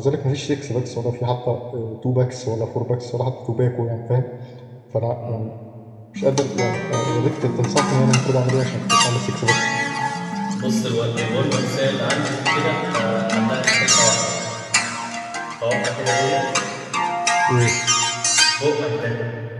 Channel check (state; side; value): identical; both; correlation 1.00